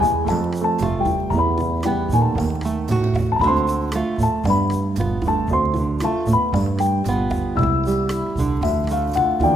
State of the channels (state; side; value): normal; both; correlation 0.81